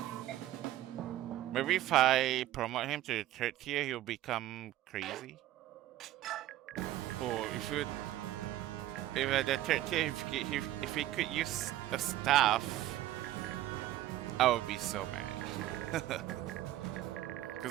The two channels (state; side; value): quieter; left; 14.3 dB